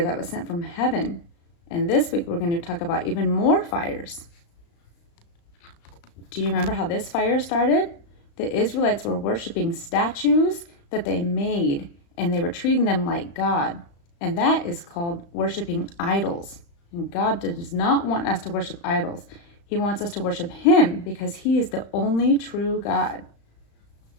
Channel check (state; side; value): late; right; 35 ms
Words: that was sent from heaven, and this week we're going to talk about even more fires. Do you remember how this fire started? The Israelites were worshiping statues that they made, and they were treating them like God, and that is called worshiping idols. And God does not want us to worship idols. He wants us to worship Him because He is the only true God.